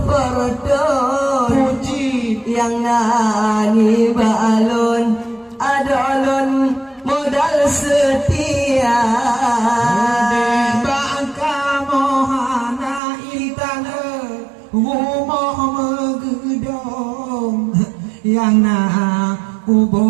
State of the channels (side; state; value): left; drops out; at 13.0 s